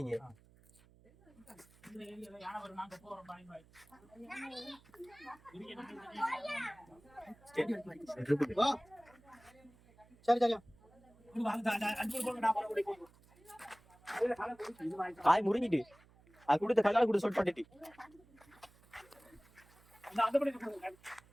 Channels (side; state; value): right; noise; hum, 27 dB below the sound